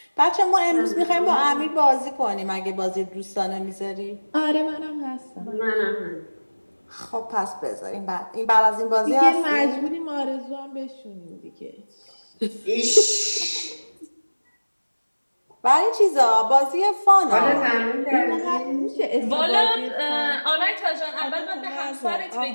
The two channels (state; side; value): inverted; both; correlation -1.00